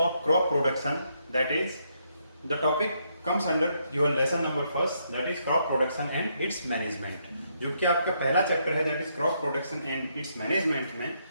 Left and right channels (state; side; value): inverted; both; correlation -0.75